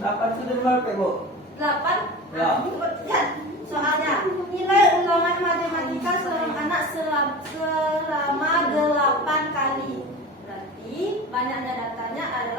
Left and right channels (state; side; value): normal; both; correlation 0.32